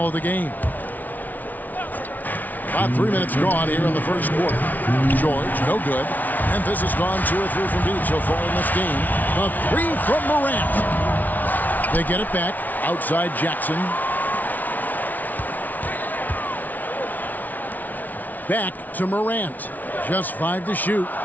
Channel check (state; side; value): late; right; 0.079 ms